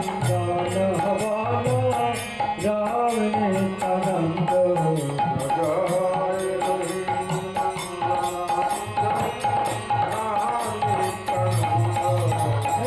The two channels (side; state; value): both; identical; correlation 1.00